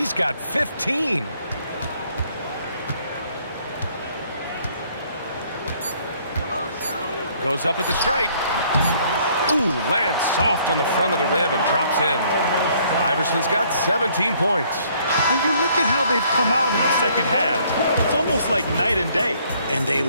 got 15. Goes up at the stripe. Ooh, lands soft on the front of the rim and drops in. Iverson's got 17 points. And you look at how they've come out in the second half. It's almost like night and day. And they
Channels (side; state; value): both; inverted; correlation -0.63